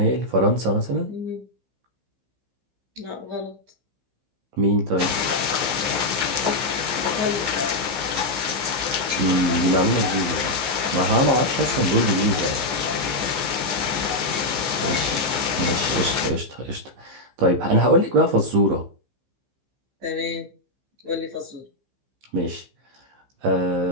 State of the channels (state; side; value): late; left; 15 ms